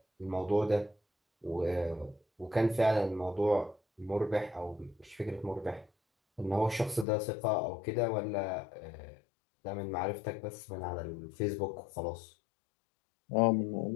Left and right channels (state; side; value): drops out; right; at 7.1 s